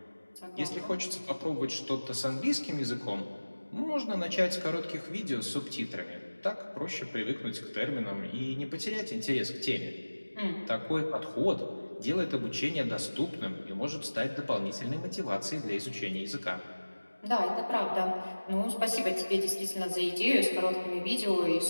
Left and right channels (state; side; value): inverted; both; correlation -1.00